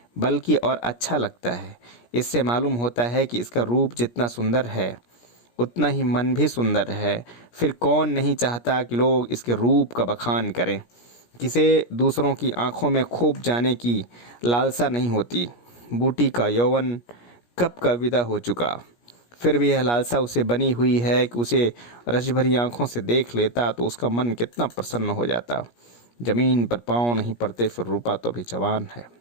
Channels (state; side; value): late; right; 17 ms